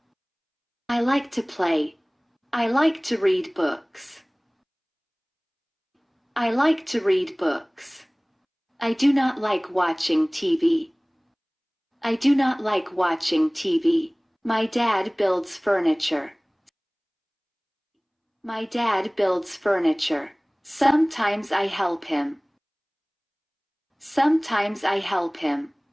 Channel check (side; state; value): both; identical; correlation 1.00